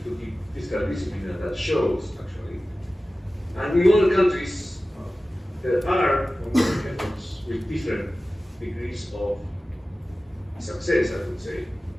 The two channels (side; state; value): both; normal; correlation 0.96